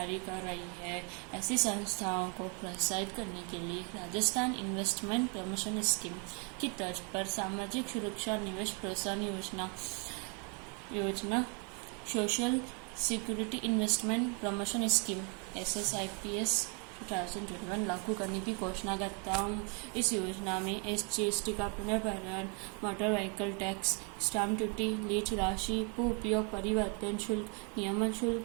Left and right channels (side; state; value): left; quieter; 36.1 dB